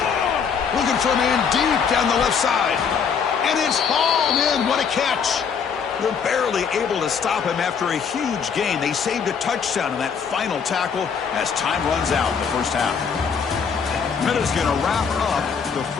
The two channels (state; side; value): quieter; right; 6.5 dB